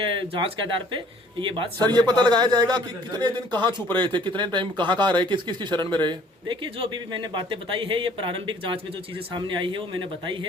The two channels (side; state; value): both; normal; correlation 0.56